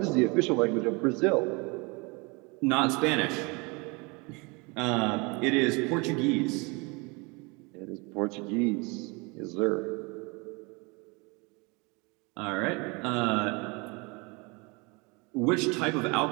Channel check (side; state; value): left; quieter; 28.6 dB